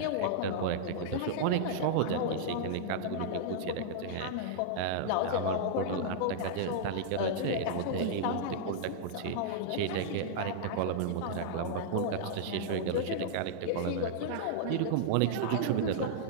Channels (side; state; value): both; different; correlation -0.02